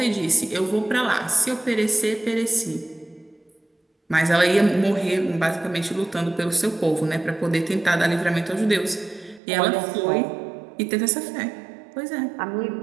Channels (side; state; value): left; drops out; at 9.4 s